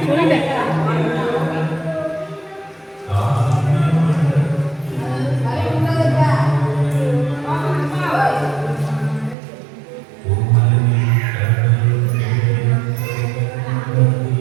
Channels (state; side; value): drops out; left; at 9.3 s